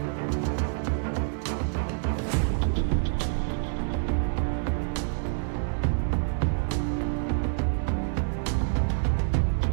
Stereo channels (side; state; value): left; silent; digital silence